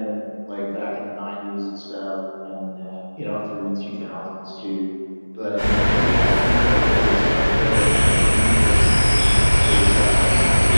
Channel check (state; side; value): inverted; both; correlation -1.00